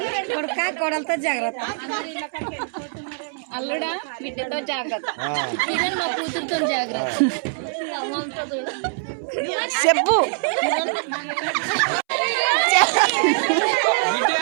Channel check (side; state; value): left; silent; 63 dB below the other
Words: కొడుక కోడలతో జాగ్రత్త. అల్లుడా బిడ్డతో జాగ్రత్త. కిరణ్ మా కూతురుతో జాగ్రత్త. చెప్పు.